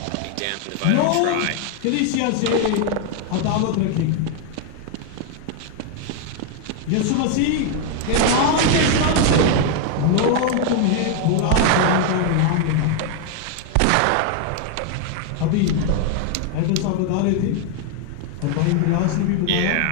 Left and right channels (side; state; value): both; different; correlation 0.00